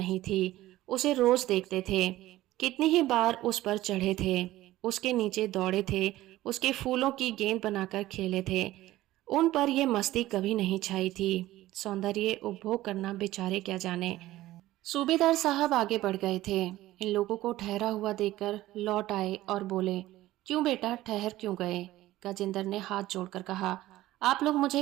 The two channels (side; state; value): left; quieter; 15.9 dB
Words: थी। उसे रोज देखते थे, कितनी ही बार उस पर चढ़े थे, उसके नीचे दौड़े थे, उसके फूलों की गेंद बनाकर खेले थे। उन पर यह मस्ती कभी नहीं छाई थी। सौंदर्य उपभोग करना बेचारे क्या जाने। सूबेदार साहब आगे बढ़ गए थे। इन लोगों को ठहरा हुआ देखकर लौट आए और बोले, क्यों बेटा, ठहर क्यों गए? गजेंद्र ने हाथ जोड़कर कहा, आप लोग मुझे